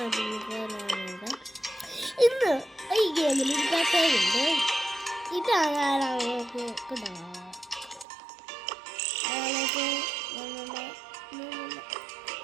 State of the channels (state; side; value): drops out; left; at 8.1 s